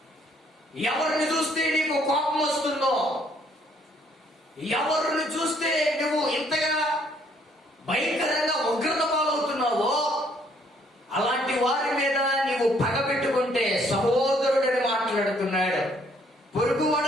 ఎవరిని చూస్తే నీకు కోపం వస్తుందో, ఎవరిని చూస్తే నువ్వు ఇంతగా భయంకరంగా ఉగ్రత పాలవుతున్నావో, అలాంటి వారి మీద నీవు పగబెట్టుకుంటే, సహోదరుడని మాట్లాడుతున్నాడు,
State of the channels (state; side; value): normal; both; correlation 0.65